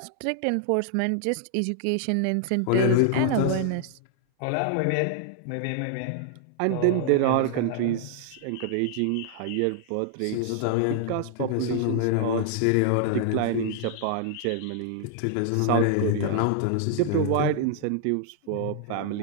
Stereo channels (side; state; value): both; different; correlation 0.00